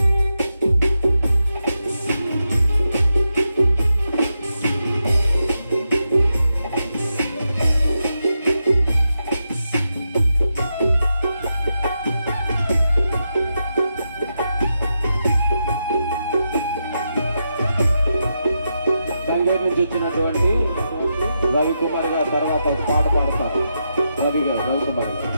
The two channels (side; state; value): both; inverted; correlation -0.86